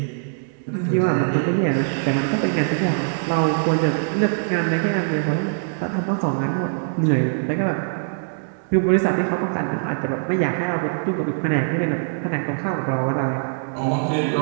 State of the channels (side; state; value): left; silent; digital silence